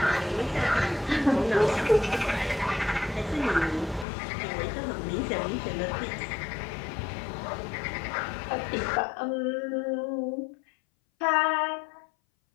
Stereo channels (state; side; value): drops out; right; at 4.0 s